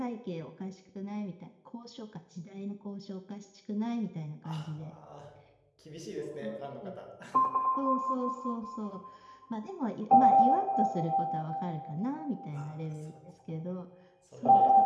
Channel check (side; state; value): both; identical; correlation 1.00